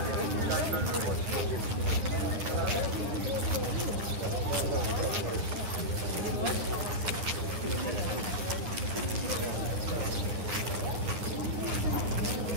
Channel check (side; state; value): left; late; 9.8 ms